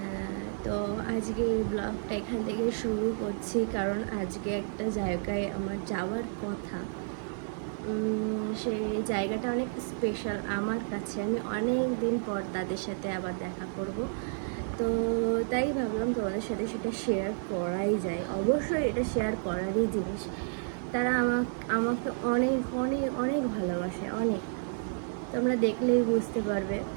তো আজকে এই ব্লগটা এখান থেকে শুরু করছি, কারণ আজকে একটা জায়গায় আমার যাওয়ার কথা। সেই জায়গাটা অনেক স্পেশাল আমার কাছে। আমি অনেক দিন পর তাদের সাথে আবার দেখা করব, তো তাই ভাবলাম তোমাদের সাথে সেটা শেয়ার করাই যায়। অবশ্যই এটা শেয়ার করারই জিনিস। তারা আমাকে অনেক অনেক অনেক ভালোবাসে, অনেক। তোমরা দেখলেই বুঝতে পারবে।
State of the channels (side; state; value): left; silent; digital silence